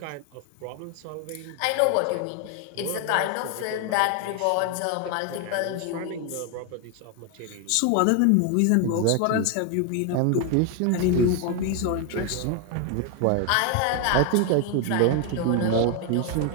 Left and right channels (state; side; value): different; both; correlation 0.01